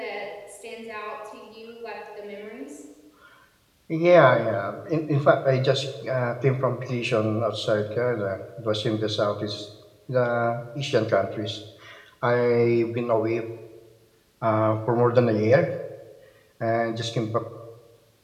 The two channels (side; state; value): both; identical; correlation 1.00